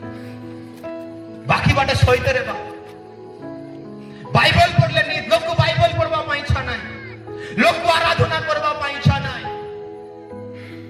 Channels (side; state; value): both; identical; correlation 1.00